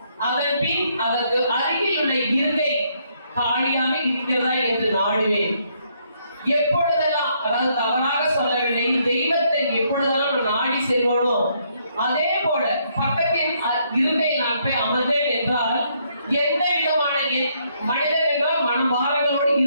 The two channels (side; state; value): both; inverted; correlation -0.71